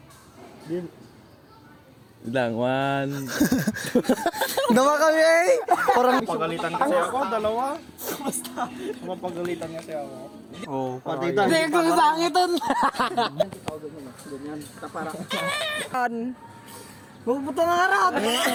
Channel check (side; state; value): both; identical; correlation 1.00